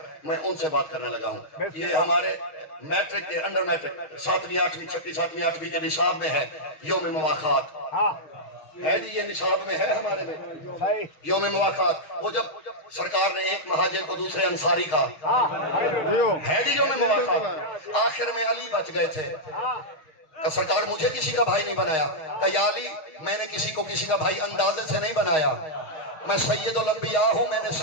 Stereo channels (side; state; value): right; late; 6.4 ms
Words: میں ان سے بات کرنے لگا ہوں. یہ ہمارے میٹرک کے انڈر میٹرک 7ویں 8ویں 6ویں 7ویں 8ویں کے نصاب میں ہے یوم مواخات ہے جی. یہ نصاب میں ہے ہمارے میں یوم مواخات. وہ جب سرکار نے ایک مہاجر کو دوسرے انصاری کا ہے جی یوم مواخات, آخر میں علی بچ گئے تھے. کہ سرکار مجھے کسی کا بھائی نہیں بنایا. کہ یا علی میں نے کسی کو کسی کا بھائی اندازے سے نہیں بنایا, میں سید الانبیاء ہوں, میں نے